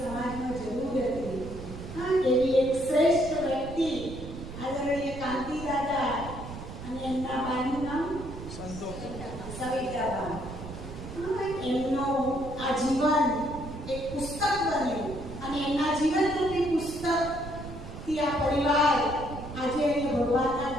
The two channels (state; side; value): noise; right; rumble, 11 dB below the sound